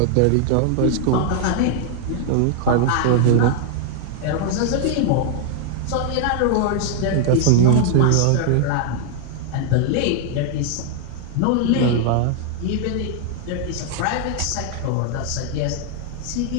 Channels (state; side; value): different; both; correlation 0.00